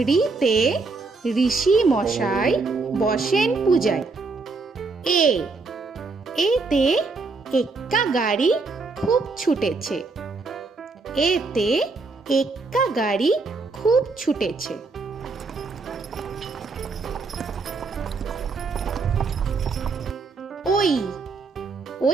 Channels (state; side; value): quieter; left; 4.0 dB